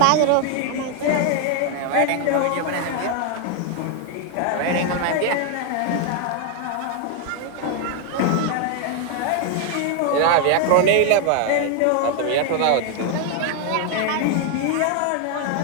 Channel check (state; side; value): different; both; correlation 0.00